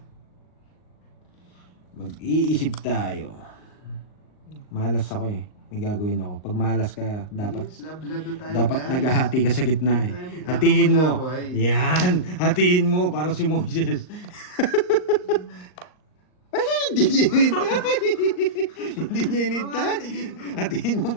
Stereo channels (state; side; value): late; right; 39 ms